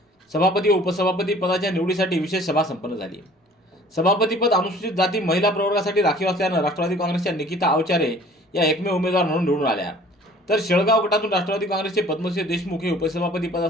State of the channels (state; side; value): normal; both; correlation 0.51